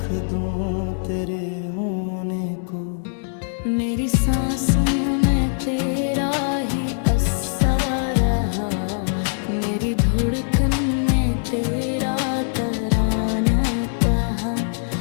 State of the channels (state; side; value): silent; right; digital silence